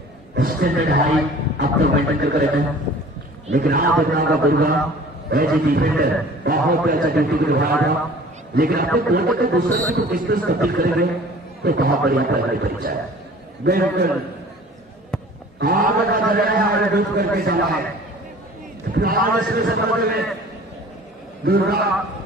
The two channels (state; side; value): normal; both; correlation 0.46